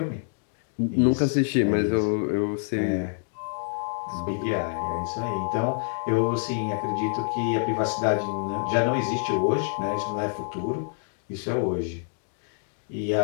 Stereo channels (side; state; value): right; silent; digital silence